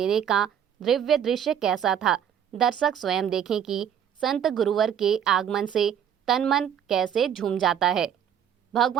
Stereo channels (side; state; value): left; quieter; 8.9 dB